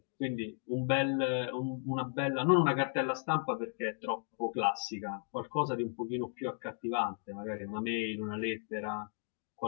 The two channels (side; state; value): right; silent; 54 dB below the other